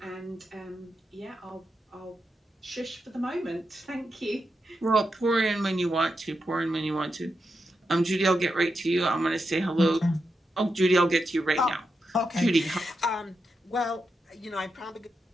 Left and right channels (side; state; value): both; normal; correlation 0.86